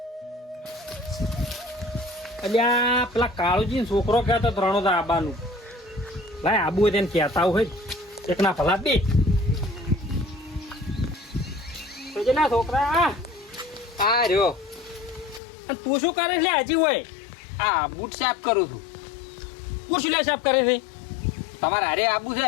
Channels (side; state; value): right; drops out; at 15.4 s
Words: અલ્યા પેલા કાળુજી છોકરો કહેતો રણોદા આબાનું. લાય આબુ હોય તેને કહેતા હોય એકના ભલા બે. ના છોકરા આ રહ્યો. અને તું શું કરે છે હજી હોય? આ બૂટ સાફ કરું છું. તું શું લે સાફ કરે છે? તમારે હારે આબુ